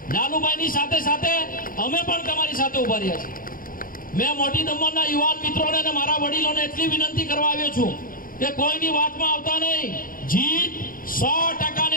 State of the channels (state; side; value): late; right; 0.41 ms